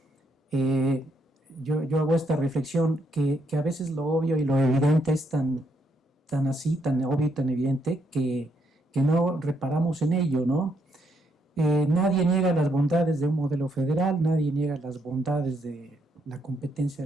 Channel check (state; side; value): normal; both; correlation 0.75